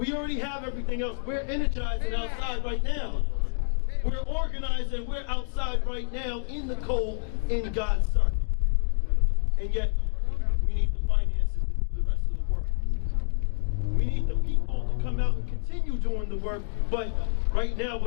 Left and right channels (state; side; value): silent; right; digital silence